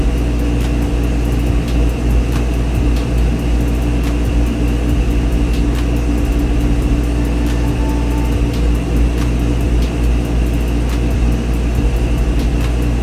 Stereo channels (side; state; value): both; identical; correlation 1.00